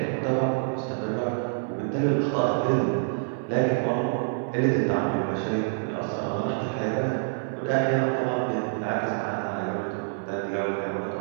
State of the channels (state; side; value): silent; left; digital silence